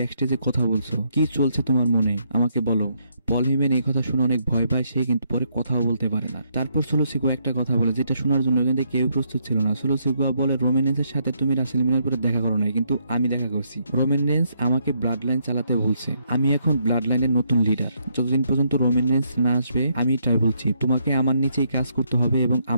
স্টেজে কথা বলছো, কি চলছে তোমার মনে আমাকে বলো। পল হিউম্যান এই কথা শুনে অনেক ভয় পায়, সে কিন্তু পরে কথাও বলতে পারে না। তারপর সোলো সিকোয়া একটা কথা বলে যেটা শোনার জন্য কিন্তু কেউ প্রস্তুত ছিল না। সোলো সিকোয়া বলে, রোমান রেন্সের সাথে তুমি রাসেলমেনিয়ার পরে দেখা করো নাই, কিন্তু আমি দেখা করছি। রোমান রেন্স আমাকে ব্লাড লাইন চালাতে বলছে, আমি এখন ব্লাড লাইনের নতুন লিডার। যতদিন পর্যন্ত রোমান রেন্স না আসবে আমি এটাই বলছি, তোমাকে আমার নিচেই কাজ করতে হবে এবং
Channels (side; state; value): both; inverted; correlation -0.74